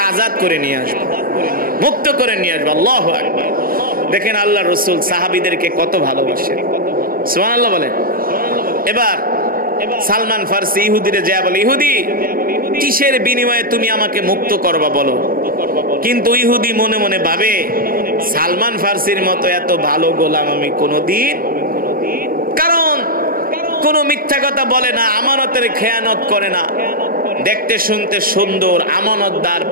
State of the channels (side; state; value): left; late; 0.42 ms